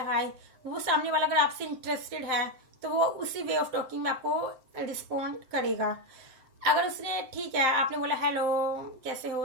हाय, वो सामने वाला अगर आपसे इंटरेस्टेड है तो वो उसी वे ऑफ टॉकिंग में आपको रिस्पॉन्ड करेगा। अगर उसने ठीक है, आपने बोला हेलो कैसे हो,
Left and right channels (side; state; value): left; late; 7.7 ms